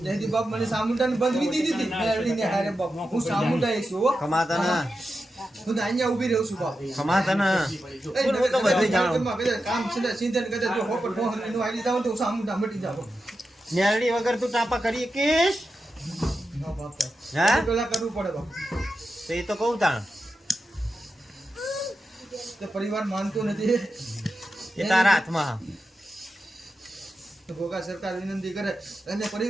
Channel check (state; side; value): normal; both; correlation 0.90